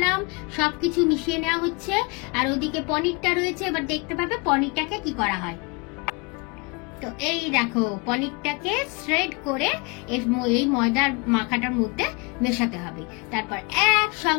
সবকিছু মিশিয়ে নেওয়া হচ্ছে, আর ওদিকে পনিরটা রয়েছে। এবার দেখতে পাবে পনিরটাকে কি করা হয়। তো এই দেখো পনিরটাকে শ্রেড করে এই ময়দার মাখাটার মধ্যে মেশাতে হবে, তারপর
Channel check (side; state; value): right; quieter; 29.4 dB